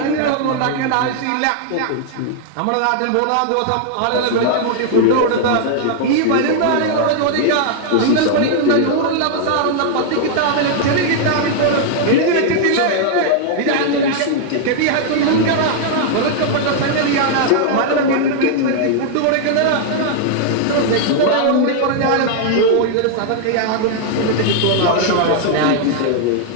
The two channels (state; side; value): different; both; correlation 0.00